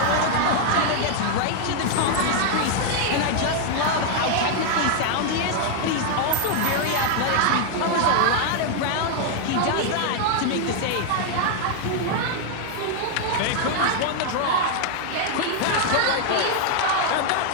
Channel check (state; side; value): different; both; correlation 0.00